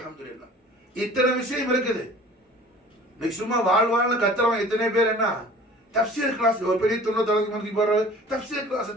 இத்தனை விஷயம் இருக்குது. நீ சும்மா வாழ்வாழ்னு கத்துறவன் இத்தனை பேர் என்ன தஃப்சீர் கிளாஸ் ஒரு பெரிய 90 மணிக்கு போற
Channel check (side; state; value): both; normal; correlation 0.46